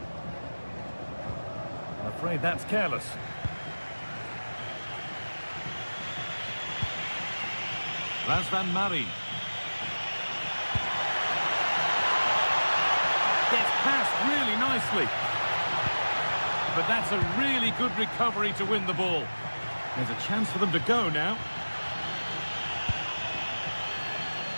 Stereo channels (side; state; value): both; inverted; correlation -1.00